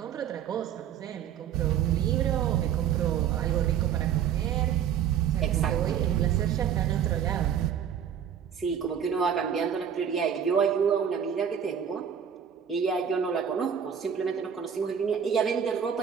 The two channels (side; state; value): left; quieter; 8.5 dB